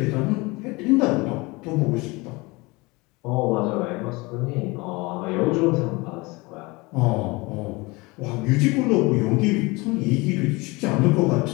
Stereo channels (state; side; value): quieter; right; 24.4 dB